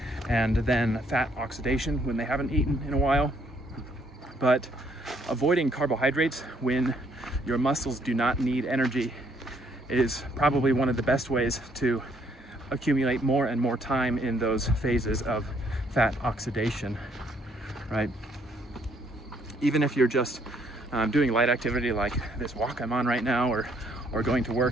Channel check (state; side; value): normal; both; correlation 0.68